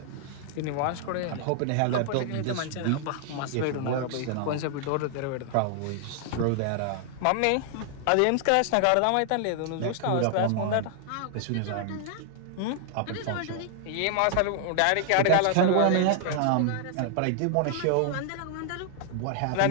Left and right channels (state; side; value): different; both; correlation 0.00